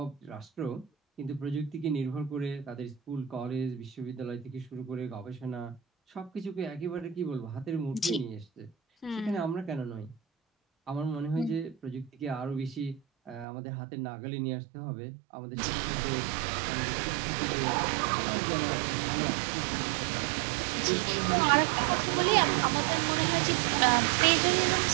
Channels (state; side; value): drops out; left; at 13.5 s